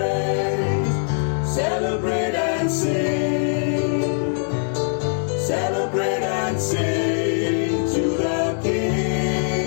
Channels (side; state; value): right; silent; digital silence